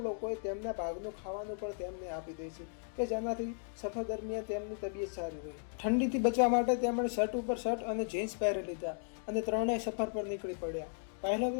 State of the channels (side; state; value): right; silent; digital silence